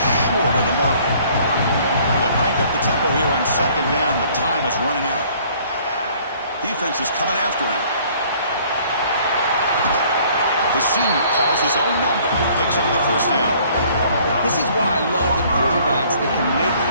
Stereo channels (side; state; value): both; inverted; correlation -0.57